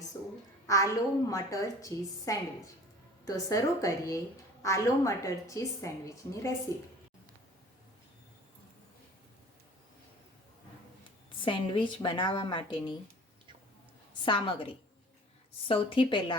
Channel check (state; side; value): normal; both; correlation 0.46